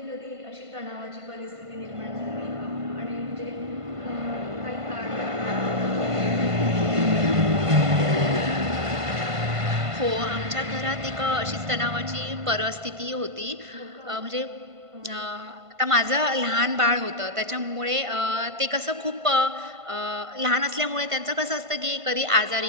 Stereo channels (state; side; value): late; left; 1.5 ms